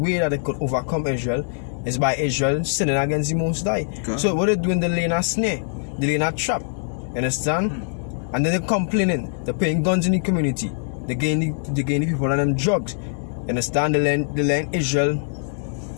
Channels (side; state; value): right; silent; digital silence